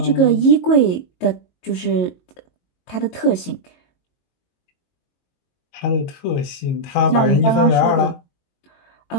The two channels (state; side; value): late; right; 22 ms